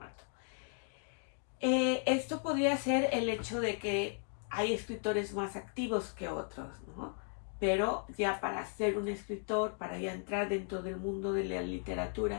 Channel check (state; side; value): silent; right; 54 dB below the other